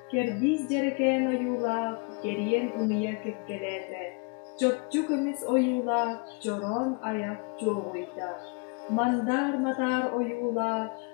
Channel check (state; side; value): quieter; right; 32.8 dB